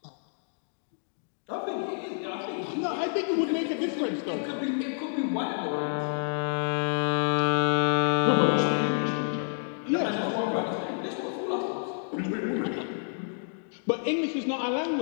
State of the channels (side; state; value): right; silent; digital silence